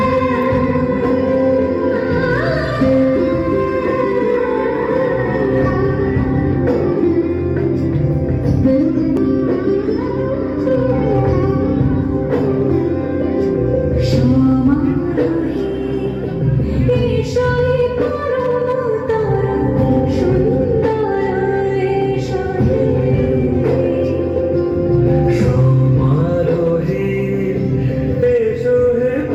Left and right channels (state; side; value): identical; both; correlation 1.00